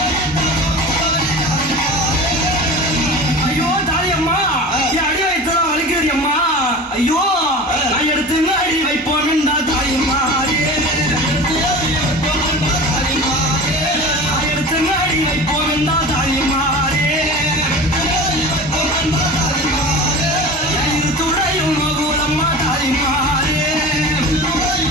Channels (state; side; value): normal; both; correlation 0.35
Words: ஐயோ தாயம்மா, என் அடி வைத்ததா வலிக்கிறது அம்மா. ஐயோ நான் எடுத்து அடி வைப்போம் என்றா தாயம்மாரே, எடுத்து அடி வைப்போம் என்றா தாயம்மாரே. துறையும் மகுலம்மா தாயம்மாரே.